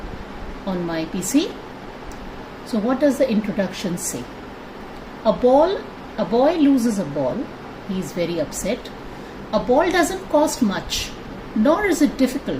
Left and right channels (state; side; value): identical; both; correlation 1.00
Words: on my PC. So what does the introduction say? A boy loses a ball. He is very upset. A ball doesn't cost much, nor is it